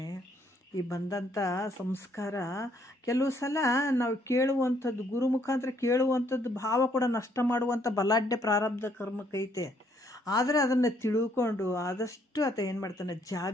ಈ ಬಂದಂಥ ಸಂಸ್ಕಾರ ಕೆಲವು ಸಲ ನಾವು ಕೇಳುವಂಥದ್ದು, ಗುರು ಮುಖಾಂತರ ಕೇಳುವಂಥದ್ದು ಭಾವ ಕೂಡ ನಷ್ಟ ಮಾಡುವಂಥ ಬಲಾಢ್ಯ ಪ್ರಾರಬ್ಧ ಕರ್ಮಕ್ಕೈತೆ. ಆದರೆ ಅದನ್ನು ತಿಳ್ಕೊಂಡು ಆದಷ್ಟು ಆತ ಏನು ಮಾಡ್ತಾನೆ,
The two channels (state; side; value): normal; both; correlation 0.68